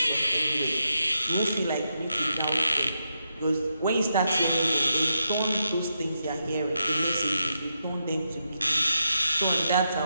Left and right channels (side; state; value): both; inverted; correlation -0.83